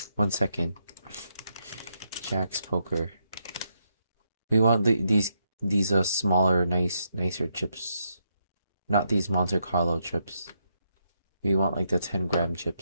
1 second. Jack's Poker. We want these smaller, nicer chips. Not these Monte Carlo chips. We want like the 10-gram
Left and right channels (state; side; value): inverted; both; correlation -0.79